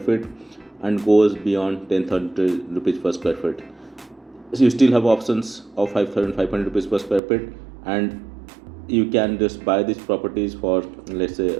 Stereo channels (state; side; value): drops out; left; at 7.2 s